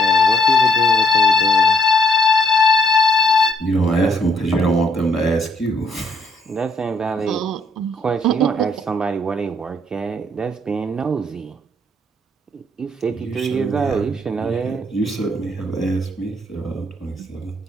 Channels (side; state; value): both; normal; correlation 0.67